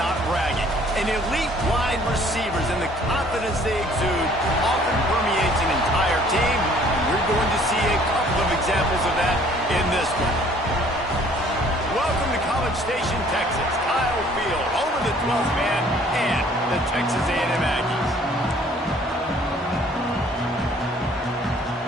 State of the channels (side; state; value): both; normal; correlation 0.57